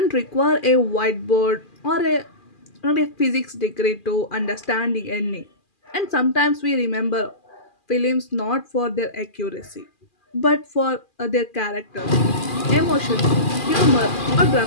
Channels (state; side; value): late; right; 2.4 ms